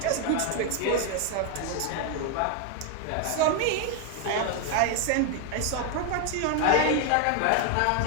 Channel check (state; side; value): different; both; correlation 0.01